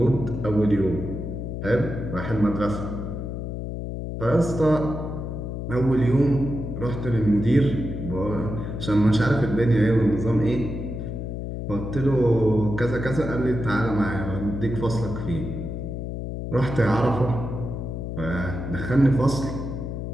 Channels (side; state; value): left; noise; hum, 5 dB below the sound